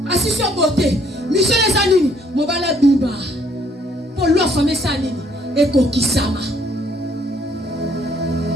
assistant aux beautés. Michel les années, mon bala biba. pour loi famille ça nini et kokisama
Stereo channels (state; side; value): normal; both; correlation 0.65